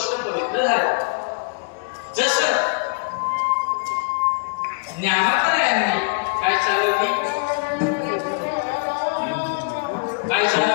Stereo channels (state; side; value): quieter; right; 34.2 dB